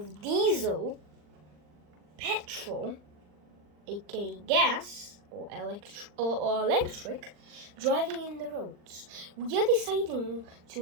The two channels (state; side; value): late; left; 39 ms